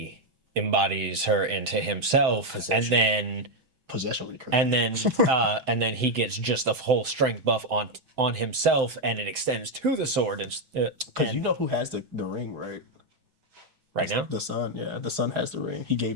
embodies her into himself, and then Possession would be crazy. and then he gets just a whole strength buff on himself, and it extends to the sword. Because you know who has the ring, right? Right now, The son, yeah. The son has the ring. He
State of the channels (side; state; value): left; late; 6.2 ms